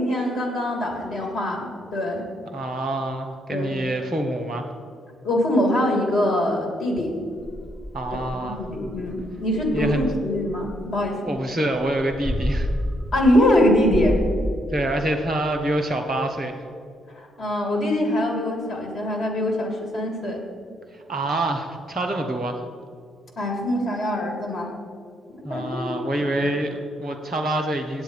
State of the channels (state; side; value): normal; both; correlation 0.74